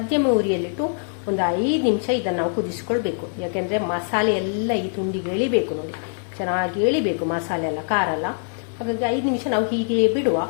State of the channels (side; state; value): right; silent; digital silence